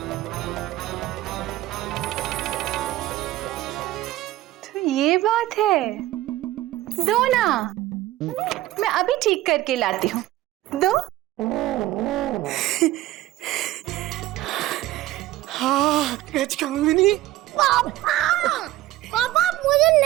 तो ये बात है, दो ना, मैं अभी ठीक करके लाती हूँ, दो। हाँ गजकामिनी। पापा मुझे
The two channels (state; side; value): quieter; left; 15.7 dB